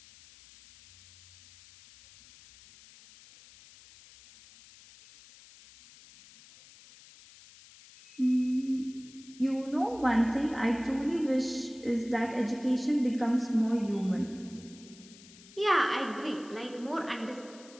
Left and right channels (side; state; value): left; noise; hiss, 22 dB below the sound